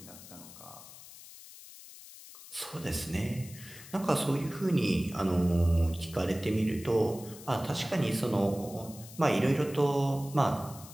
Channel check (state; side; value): noise; left; hiss, 17 dB below the sound